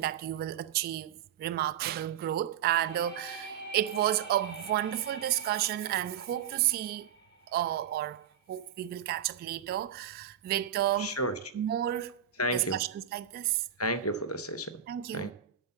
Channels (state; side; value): quieter; left; 9.0 dB